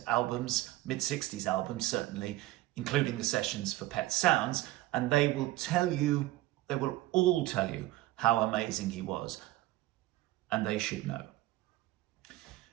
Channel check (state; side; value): quieter; left; 16.9 dB